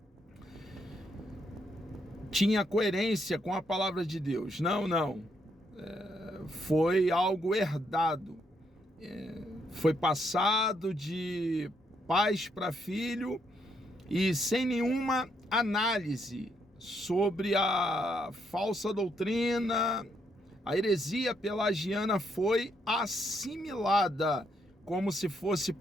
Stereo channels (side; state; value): both; normal; correlation 0.75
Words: tinha coerência com a palavra de Deus. Não. Foi algo herdado. Foi passado de pais para filho e sem nenhuma análise sobre a falsa doutrina. A heresia pelagiana foi assimilada como se fosse